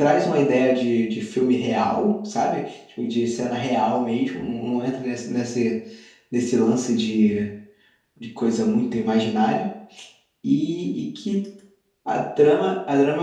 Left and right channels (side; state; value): both; identical; correlation 1.00